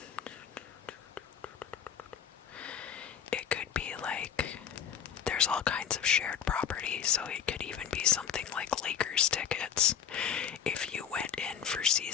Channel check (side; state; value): right; quieter; 8.4 dB